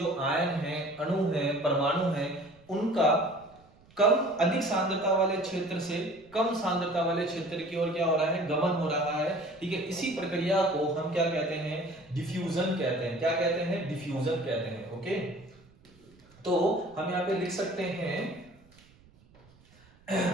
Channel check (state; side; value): noise; right; rumble, 28 dB below the sound